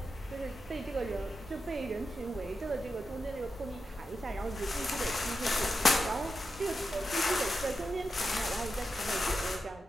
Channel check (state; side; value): normal; both; correlation 0.88